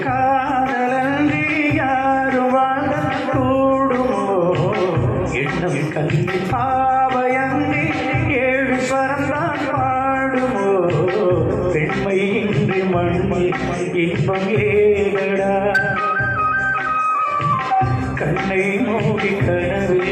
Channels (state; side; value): identical; both; correlation 1.00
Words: காதலன்றி யாரும் வாழ கூடுமோ எண்ணம் கண்ணி பாவையன்றி ஏழு ஸ்வரம்தான் பாடுமோ பெண்மை இன்றி மண்ணில் இன்பம் ஏதடா கண்ணை மூடி